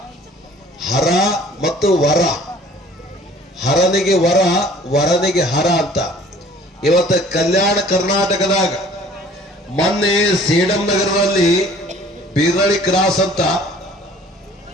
ಹರ ಮತ್ತು ವರ, ಹರನಿಗೆ ವರ, ವರನಿಗೆ ಹರ ಅಂತ. ಇವತ್ತು ಕಲ್ಯಾಣ ಕರ್ನಾಟಕದಾಗ ಮೊನ್ನೆ ಸೇಡಂ ನಗರದಲ್ಲಿ ಬೀರಳಿ ಕ್ರಾಸ್ ಅಂತ,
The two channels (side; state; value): both; normal; correlation 0.52